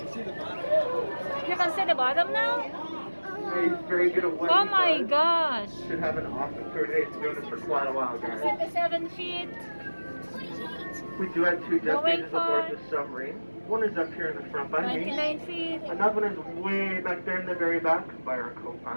You can see the bottom now? He's very good at what Oh he my does. gosh. Should have an awesome tour today. He's been doing this for quite a while, guys. 7 feet. We do have 2 depth Going gauges aboard for the submarine. One is up here in the front by me. 29 feet. Another one is way back there in the very back by our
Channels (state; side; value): inverted; both; correlation -1.00